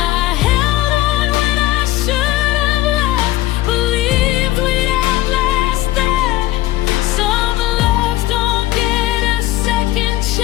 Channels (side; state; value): right; quieter; 16.2 dB